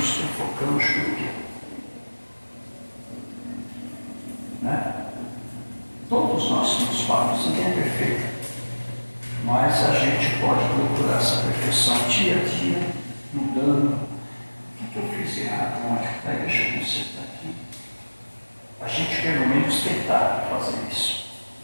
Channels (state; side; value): inverted; both; correlation -1.00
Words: sufocamos por quê? Né? Todos nós somos falhos, ninguém é perfeito. Mas a gente pode procurar essa perfeição dia a dia, mudando. O que eu fiz errado ontem? Deixa eu consertar aqui. A gente pelo menos tentar fazer isso.